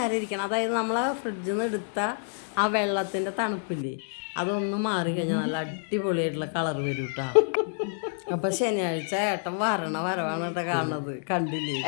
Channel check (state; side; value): silent; right; digital silence